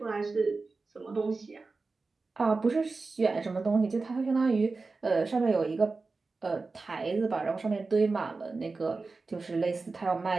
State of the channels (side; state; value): left; quieter; 3.9 dB